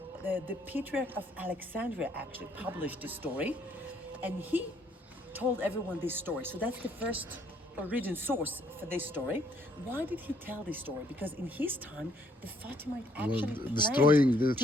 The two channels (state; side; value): normal; both; correlation 0.67